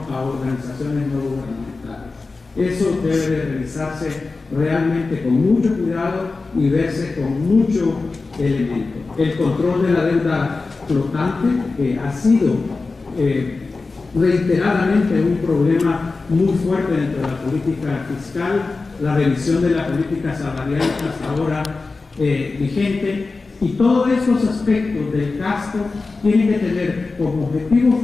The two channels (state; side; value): quieter; right; 3.9 dB